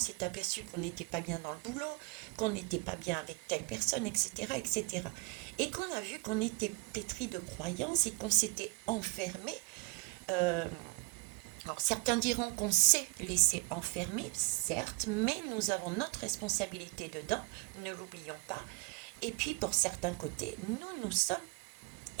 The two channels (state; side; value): quieter; left; 27.8 dB